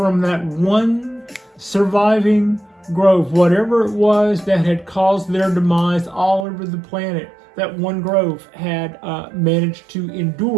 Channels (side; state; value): left; drops out; at 6.5 s